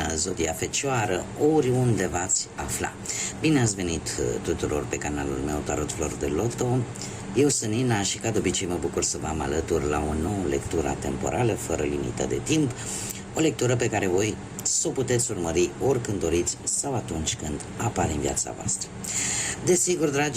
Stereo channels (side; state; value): both; identical; correlation 1.00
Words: Zodia Fecioară, oriunde v-ați afla. Bine ați venit tuturor pe canalul meu Tarot Flori de Loto. Eu sunt Nina și ca de obicei mă bucur să vă am alături la o nouă lectură temporală fără limită de timp. O lectură pe care voi să o puteți urmări oricând doriți sau atunci când apare în viața voastră. Desigur,